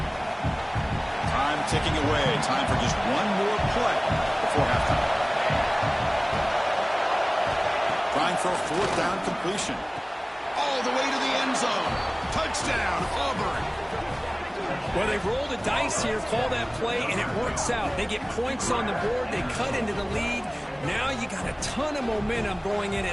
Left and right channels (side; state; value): both; identical; correlation 1.00